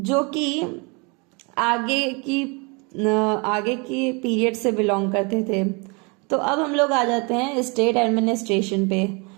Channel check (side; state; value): left; quieter; 30.7 dB